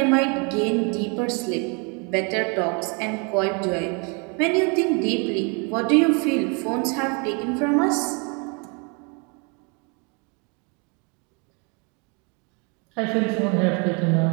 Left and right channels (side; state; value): left; quieter; 33.8 dB